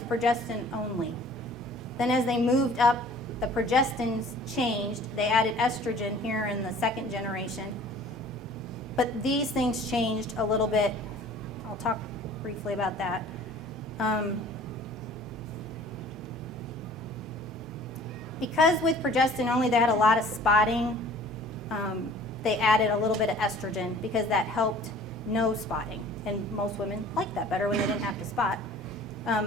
progestin only. Then as they moved up, the progestins changed. They added estrogen here in the second generation. But these things changed a little bit. I'll talk briefly about that. Because with progestin only, they had a lot of spotting. They added a little bit of estrogen because that helped no spotting. And most women liked that better when they didn't have to spot.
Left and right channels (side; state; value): both; normal; correlation 0.49